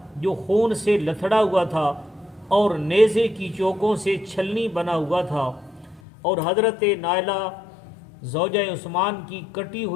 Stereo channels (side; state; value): right; drops out; at 6.0 s